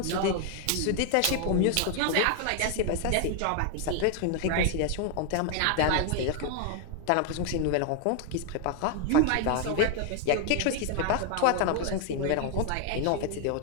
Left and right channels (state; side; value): different; both; correlation 0.00